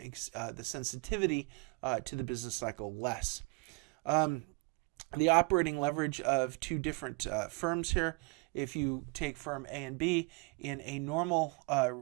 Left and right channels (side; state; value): left; quieter; 30.1 dB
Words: the sensitivity to the business cycle less. The operating leverage of two different firms here. If you take firm A and B, in a normal